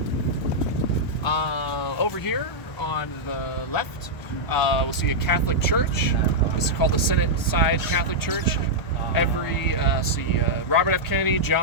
Over here on the left, we'll see a Catholic church. This is called the Senate Side Catholic Church. Robert F. Kennedy,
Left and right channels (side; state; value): right; late; 1.4 ms